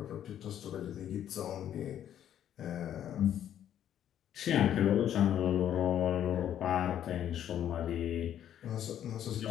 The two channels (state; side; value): quieter; right; 10.5 dB